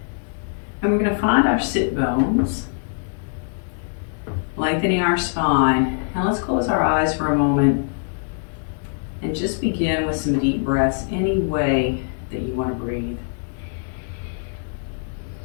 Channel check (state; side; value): silent; right; 64 dB below the other